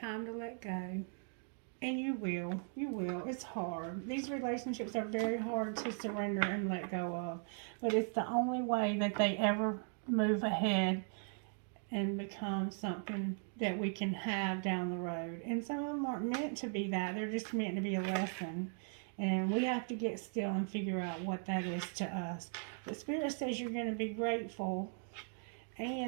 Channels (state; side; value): silent; left; 52 dB below the other